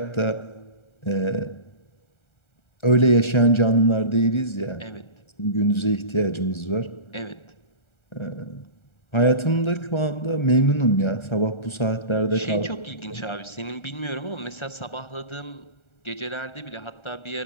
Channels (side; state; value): right; late; 1.3 ms